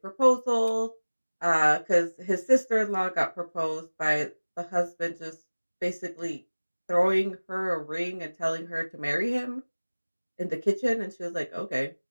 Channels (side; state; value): both; inverted; correlation -1.00